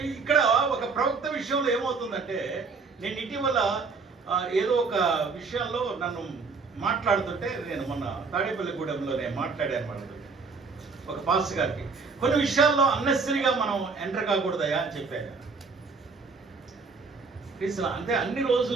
ఇక్కడ ఒక ప్రవక్త విషయంలో ఏమవుతుందంటే, నేను ఇటీవల ఏదో ఒక విషయంలో నన్ను మాట్లాడుతుంటే నేను మొన్న తాడేపల్లిగూడెంలో నేను మాట్లాడాను వాళ్ళతో ఒక పాస్టర్ గారికి. కొన్ని విషయాల్లో అన్నెసరీగా మనం ఎంటర్ కాకూడదయా అని చెప్పాను. అంటే అన్ని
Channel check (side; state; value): left; quieter; 4.6 dB